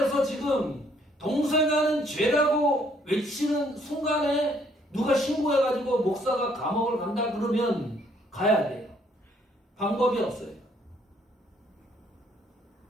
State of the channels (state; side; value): normal; both; correlation 0.66